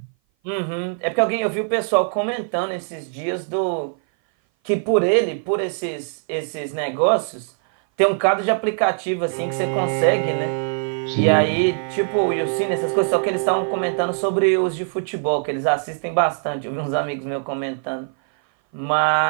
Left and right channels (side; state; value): left; silent; 58 dB below the other